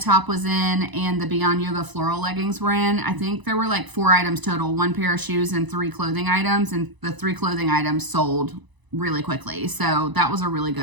was in, and the Beyond Yoga floral leggings were in. I think there were like 4 items total, 1 pair of shoes and 3 clothing items, and the 3 clothing items sold really quickly. So that was a really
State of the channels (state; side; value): late; left; 1.0 ms